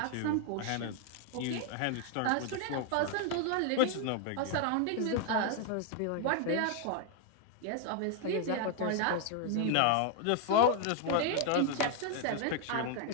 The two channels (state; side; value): different; both; correlation 0.00